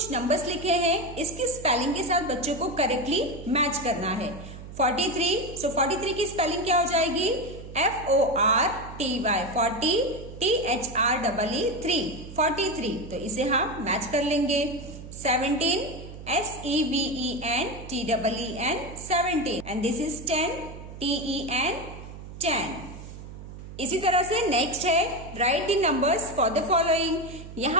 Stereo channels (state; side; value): noise; right; hum, 13 dB below the sound